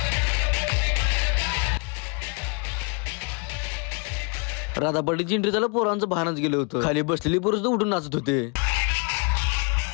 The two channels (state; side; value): quieter; right; 35.0 dB